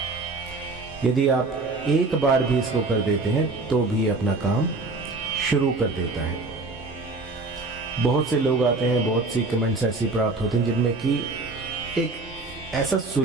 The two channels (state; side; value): quieter; left; 3.5 dB